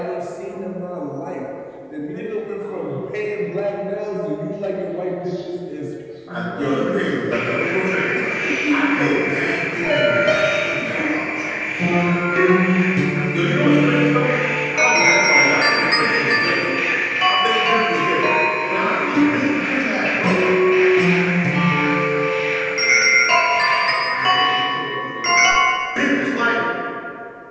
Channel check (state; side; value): identical; both; correlation 1.00